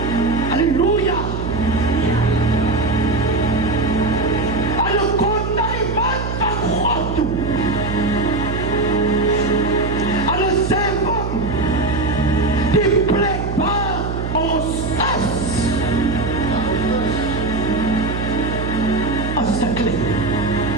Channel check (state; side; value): noise; right; hum, 4 dB below the sound